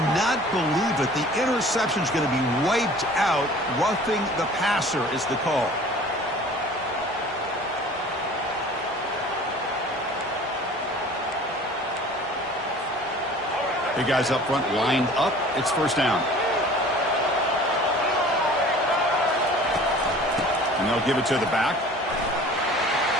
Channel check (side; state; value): both; normal; correlation 0.46